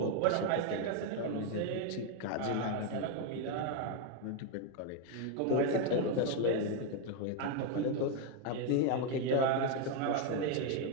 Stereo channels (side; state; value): both; different; correlation 0.01